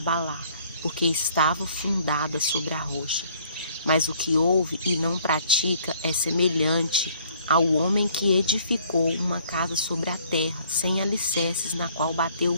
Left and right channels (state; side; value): inverted; both; correlation -0.60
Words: porque estava fundada sobre a rocha. Mas o que ouve e não pratica é semelhante ao homem que edificou uma casa sobre a terra, sem alicerces, na qual bateu